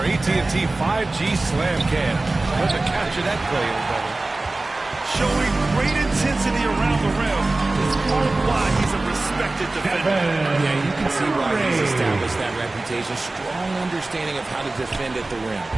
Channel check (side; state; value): left; quieter; 3.1 dB